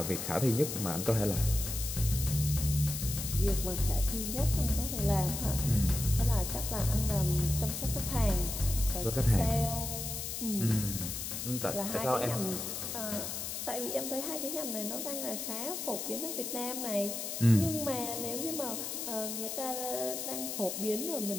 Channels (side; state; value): left; noise; hiss, 5 dB below the sound